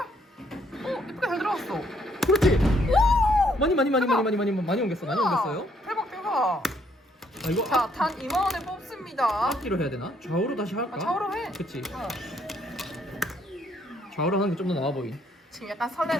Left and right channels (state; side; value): normal; both; correlation 0.69